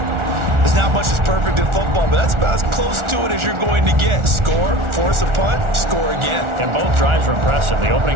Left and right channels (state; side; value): late; left; 1.4 ms